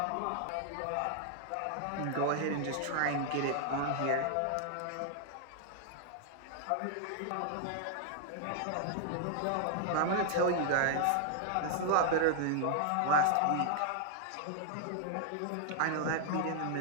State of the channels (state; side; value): different; both; correlation 0.00